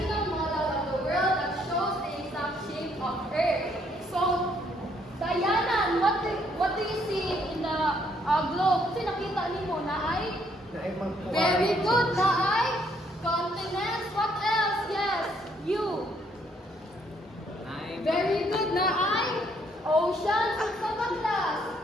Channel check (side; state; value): both; normal; correlation 0.69